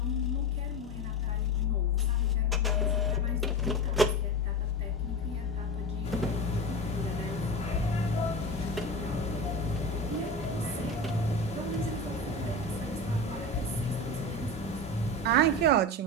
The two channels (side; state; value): both; normal; correlation 0.25